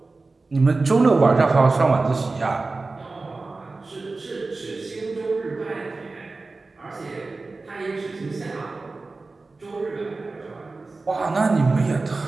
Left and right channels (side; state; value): left; quieter; 3.6 dB